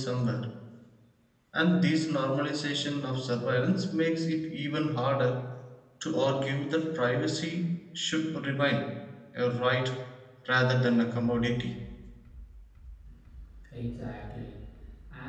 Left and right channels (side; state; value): both; identical; correlation 1.00